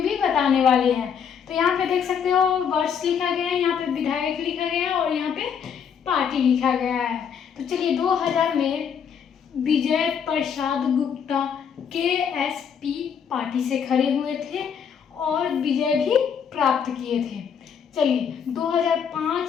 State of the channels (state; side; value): quieter; right; 7.4 dB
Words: भी बताने वाले हैं। तो यहाँ पे देख सकते हो वर्ष लिखा गया है, यहाँ पे विधायक लिखा गया है और यहाँ पे पार्टी लिखा गया है। तो चलिए, 2000 में विजय प्रसाद गुप्ता केएसपी पार्टी से खड़े हुए थे और विजय भी प्राप्त किए थे। चलिए,